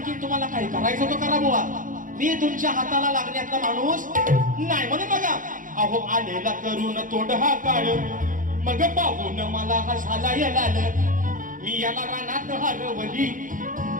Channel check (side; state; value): left; late; 0.39 ms